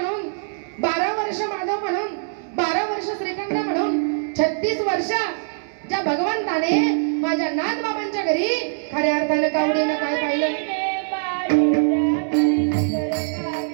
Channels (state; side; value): silent; left; 64 dB below the other